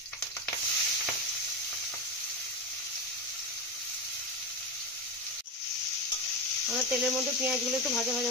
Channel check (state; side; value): normal; both; correlation 0.17